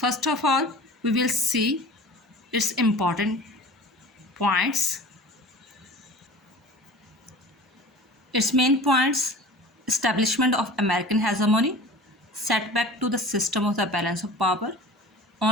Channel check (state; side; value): normal; both; correlation 0.40